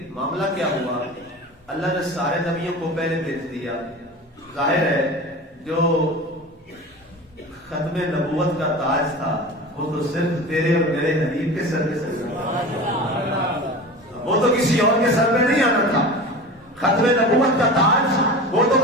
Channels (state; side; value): normal; both; correlation 0.33